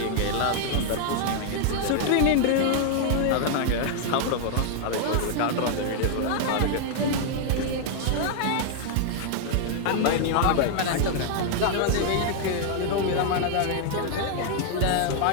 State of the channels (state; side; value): different; both; correlation 0.00